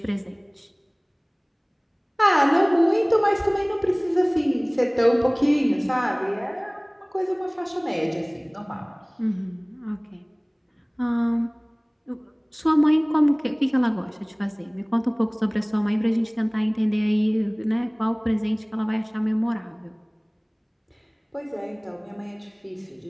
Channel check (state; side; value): identical; both; correlation 1.00